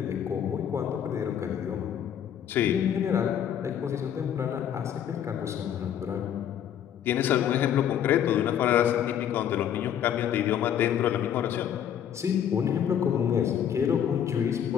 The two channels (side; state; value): right; quieter; 9.5 dB